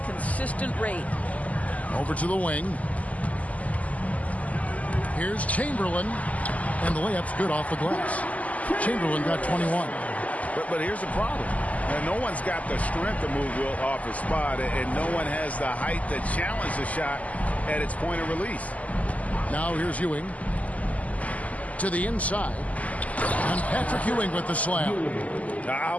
consistent rate. Over to the wing. Here's Chamberlain. And the layup's good off the glass. Chamberlain got 21. But here's the problem. Now, no one's got the strength to move Wilt off his spot, and no one has the height to challenge the shot at its point of release. Now here's Ewing. To the inside. And Patrick Ewing with the slam. I'll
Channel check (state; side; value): late; right; 0.073 ms